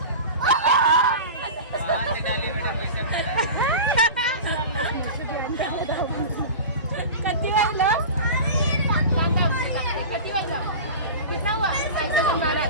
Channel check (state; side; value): inverted; both; correlation -0.31